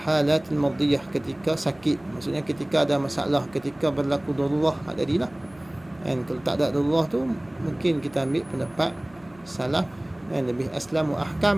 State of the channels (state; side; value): noise; right; hum, 27 dB below the sound